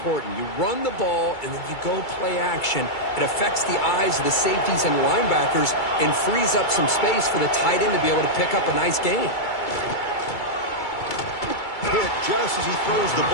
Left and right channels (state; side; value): late; right; 2.3 ms